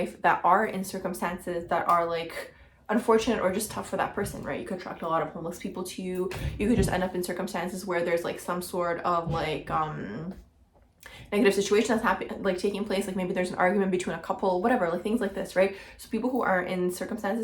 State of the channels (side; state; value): both; identical; correlation 1.00